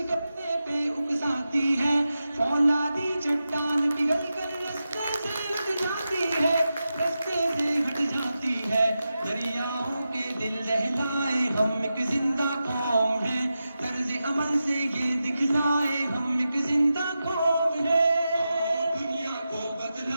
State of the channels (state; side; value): inverted; both; correlation -0.91